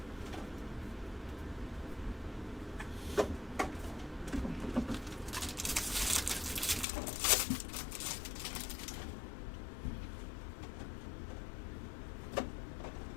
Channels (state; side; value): drops out; right; at 6.9 s